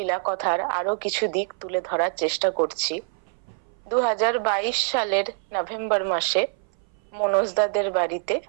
কথার আরো কিছু দিক তুলে ধরার চেষ্টা করছি। 2022 সালের নভেম্বর মাসে মনোজদাদের বাড়িতে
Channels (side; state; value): left; silent; 58 dB below the other